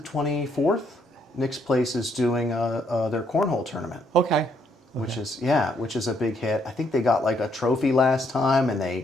Nick's Place is doing their cornhole tournament. Okay. Which is a big hit. I think they got like a trophy last time, and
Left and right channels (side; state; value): both; normal; correlation 0.71